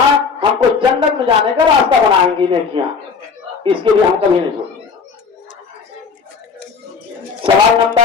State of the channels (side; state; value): right; quieter; 5.4 dB